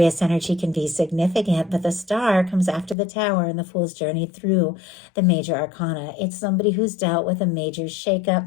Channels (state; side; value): drops out; right; at 3.0 s